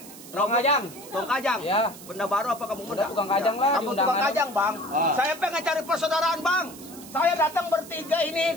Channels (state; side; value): noise; right; hiss, 17 dB below the sound